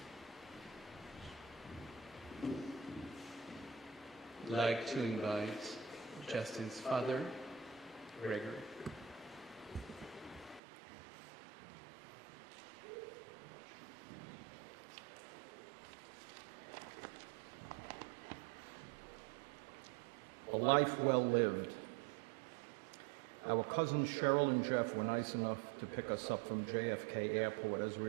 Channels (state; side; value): drops out; left; at 10.6 s